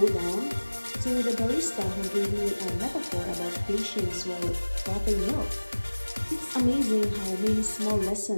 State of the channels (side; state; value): both; inverted; correlation -1.00